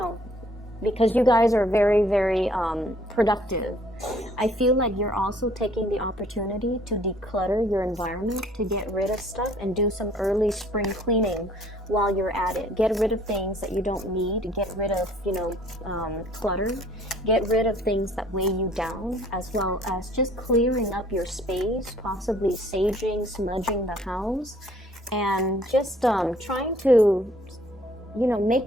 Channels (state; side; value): normal; both; correlation 0.59